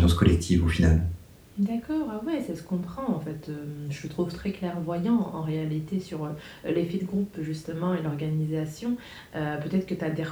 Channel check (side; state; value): both; identical; correlation 1.00